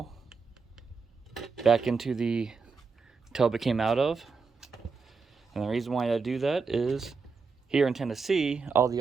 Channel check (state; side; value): quieter; left; 4.9 dB